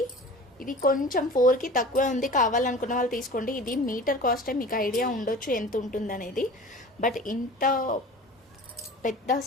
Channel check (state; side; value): normal; both; correlation 0.40